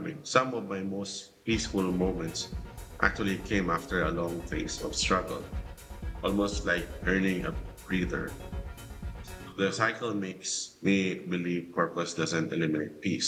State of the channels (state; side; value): identical; both; correlation 1.00